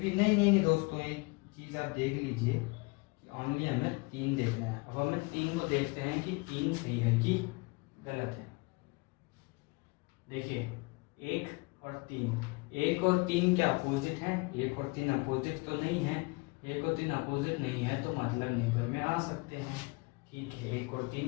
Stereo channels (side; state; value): right; quieter; 27.5 dB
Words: नहीं दोस्तों, एक चीज़ आप देख लीजिए कि ओनली हमें 3 देखना है। अब हमें 3 को देखते हैं कि 3 सही है कि गलत है। देखिए, 1 और 3 क्या अपोजिट हैं? 1 और 3 अपोजिट तो नहीं है। 1 और 3 अपोजिट नहीं है, तो मतलब नेबर में आ सकते हैं। ठीक है, 1 और